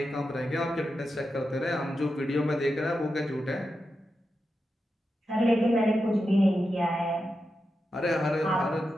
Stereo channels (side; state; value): both; normal; correlation 0.89